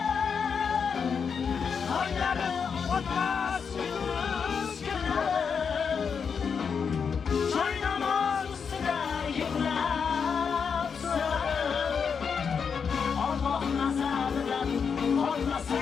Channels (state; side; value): quieter; right; 6.3 dB